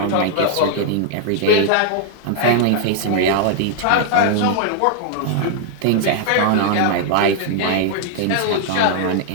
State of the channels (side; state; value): both; different; correlation 0.00